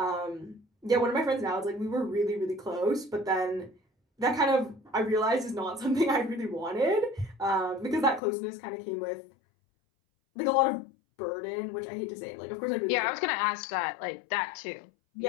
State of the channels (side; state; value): right; drops out; at 8.2 s